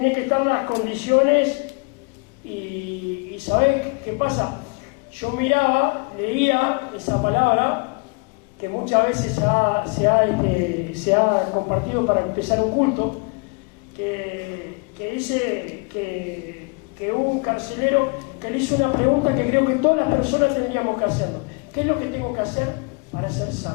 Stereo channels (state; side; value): quieter; right; 31.4 dB